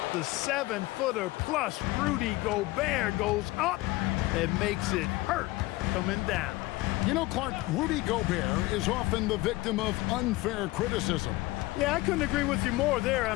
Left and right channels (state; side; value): quieter; right; 19.9 dB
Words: The 7-footer plus Rudy Gobert goes up and makes it hurt coming down. You know, Clark, Rudy Gobert is often the victim of unfair criticism. Yeah, I couldn't agree with you more there. I